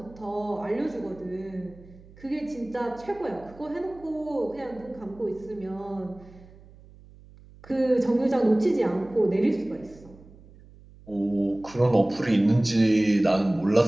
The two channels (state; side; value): noise; right; hum, 23 dB below the sound